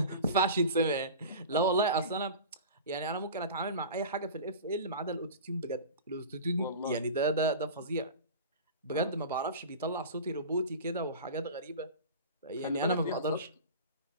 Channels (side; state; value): both; inverted; correlation -0.34